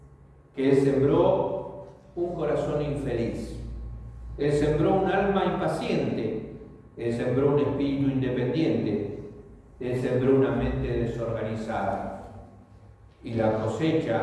que él sembró un corazón infeliz. Él sembró un alma impaciente. Él sembró un espíritu independiente. Él sembró una mente desorganizada. Y la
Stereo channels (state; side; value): identical; both; correlation 1.00